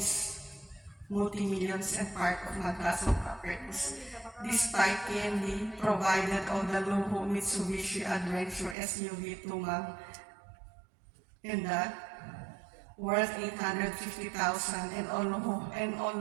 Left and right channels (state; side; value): drops out; left; at 8.8 s